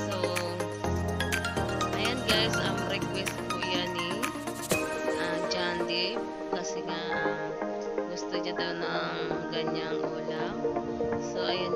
ayan guys. Request po yan ni John Dave. Kasi nga, gusto niya daw ng ganyang ulam. So,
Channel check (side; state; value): both; identical; correlation 1.00